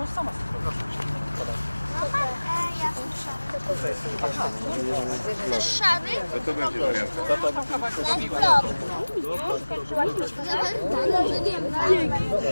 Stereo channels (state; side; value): inverted; both; correlation -1.00